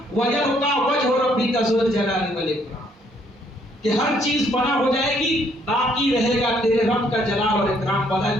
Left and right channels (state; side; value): normal; both; correlation 0.67